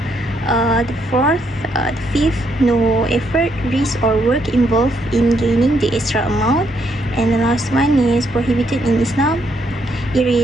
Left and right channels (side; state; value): both; normal; correlation 0.74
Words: The fifth, no effort, risk, or work involved in gaining the extra amount. And the last one is prohibited in Islam. It